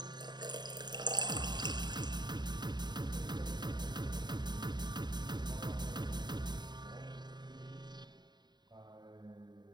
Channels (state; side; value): late; left; 0.21 ms